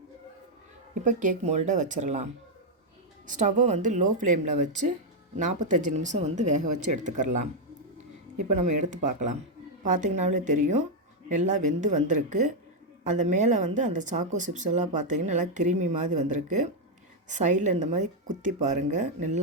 இப்போ கேக் மோல்டை வச்சிடலாம். ஸ்டவ்வை லோ ஃப்ளேமில் வச்சு 45 நிமிஷம் வேக வச்சு எடுத்துக்கிறலாம். இப்போ நம்ம எடுத்து பார்க்கலாம். பார்த்திங்கனாலே தெரியும், நல்லா வெந்து வந்திருக்கு. அந்த மேலே அந்த சாக்கோ சிப்ஸ் எல்லாம் பார்த்திங்கன்னா நல்லா கிரீமி மாதிரி வந்திருக்கு. சைடில் இந்த மாதிரி குத்தி பாருங்கள்,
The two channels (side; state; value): both; normal; correlation 0.00